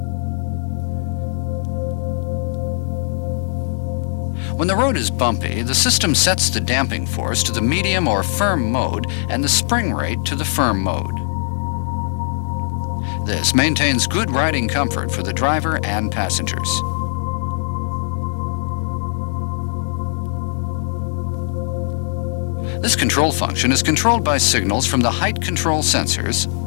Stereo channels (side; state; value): right; silent; digital silence